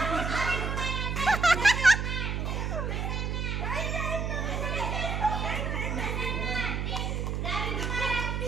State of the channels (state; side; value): noise; right; hum, 1 dB below the sound